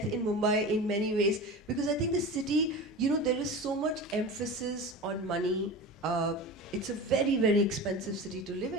in Mumbai in many ways, because I think the city, you know, there is so much emphasis on money. It's a very, very expensive city to live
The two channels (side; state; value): both; normal; correlation 0.30